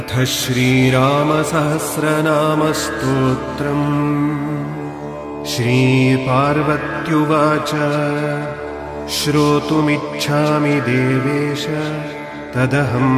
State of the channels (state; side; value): identical; both; correlation 1.00